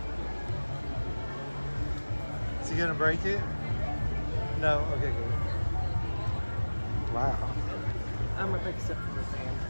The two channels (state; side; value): inverted; both; correlation -1.00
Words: Is he gonna break it? No? Okay, good. Wow. I'm a big Simplor fan.